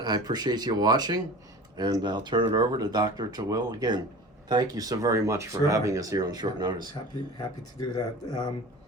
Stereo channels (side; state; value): both; normal; correlation 0.38